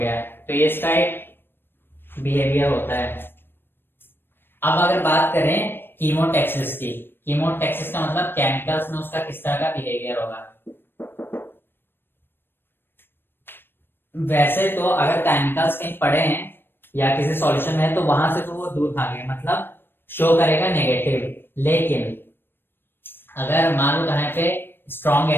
तो ये इसका एक बिहेवियर होता है। अब अगर बात करें कीमोटेक्सिस की, कीमोटेक्सिस का मतलब केमिकल्स में उसका किस तरह का बिहेवियर होगा। वैसे तो अगर केमिकल्स कहीं पड़े हैं या किसी सॉल्यूशन में है तो वहां से तो वो दूर भागेगा, मतलब शो करेगा नेगेटिव। लेकिन अगर मान लो कहीं पे स्ट्रॉन्ग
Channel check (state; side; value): late; right; 0.099 ms